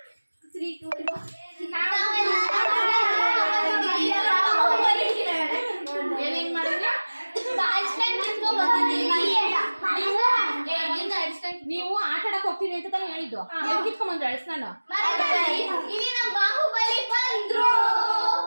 ನೀವು ಆಟ ಆಡಕ್ ಹೋಗ್ತೀನಿ ಅಂತ ತಾನೇ ಹೇಳಿದ್ದು. ಕಿತ್ಕೊಂಡ್ಬಂದ್ರೆ ಅಳಿಸ್ ನಾನು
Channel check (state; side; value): inverted; both; correlation -1.00